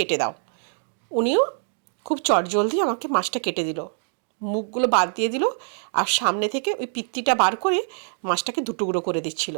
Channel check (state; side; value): silent; left; digital silence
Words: দাও। উনিও খুব চটজলদি আমাকে মাছটা কেটে দিল, মুখগুলো বাদ দিয়ে দিল, আর সামনে থেকে ওই পিত্তিটা বার করে মাছটাকে দুটুকরো করে দিচ্ছিল।